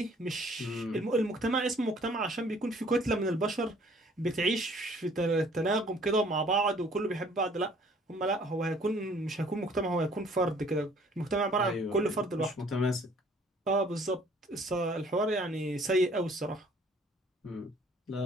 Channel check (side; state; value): both; normal; correlation 0.57